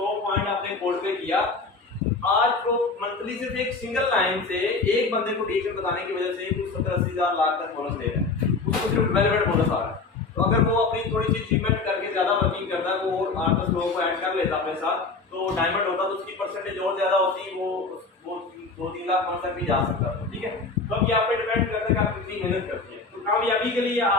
पॉइंट अपने कोड पे किया, आज तो मंथली सिर्फ एक सिंगल लाइन से एक बंदे को DXN बताने की वजह से कुछ 70-80 हज़ार लाख तक बोनस दे रहा है, उसको सिर्फ डेवलपमेंट बोनस आ रहा है। तो अगर वो अपनी थोड़ी सी अचीवमेंट करके ज्यादा वर्किंग करता है, वो 8-10 लोगों को ऐड कर लेता अपने साथ, तो डायमंड होता तो उसकी परसेंटेज और ज्यादा होती, वो 2-3 लाख पॉइंट तक भी जा सकता था, ठीक है। तो अब ये आप पे डिपेंड करता है कि आप कितनी मेहनत करते हैं। तो कामयाबी के लिए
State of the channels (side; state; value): right; quieter; 4.0 dB